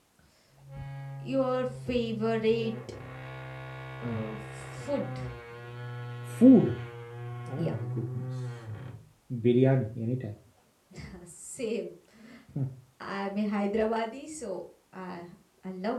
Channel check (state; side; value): identical; both; correlation 1.00